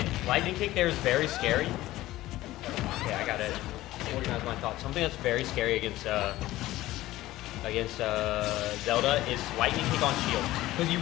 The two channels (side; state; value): right; quieter; 16.4 dB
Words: Lightning Kick there is very scary. Okay, I got to organize my thoughts. Something that's very scary against Zelda is Lightning Kick on shield. Because you